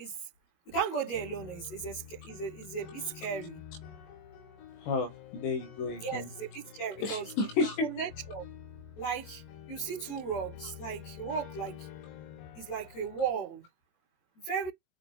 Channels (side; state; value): right; late; 20 ms